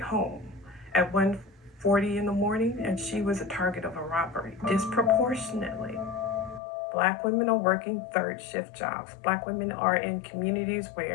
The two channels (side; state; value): right; drops out; at 6.6 s